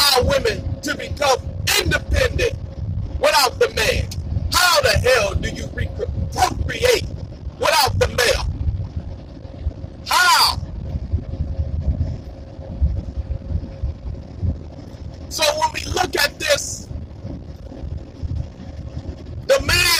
women to become independent without the man. How the hell do you procreate without the male? How? So when we look at this, the man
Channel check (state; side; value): identical; both; correlation 1.00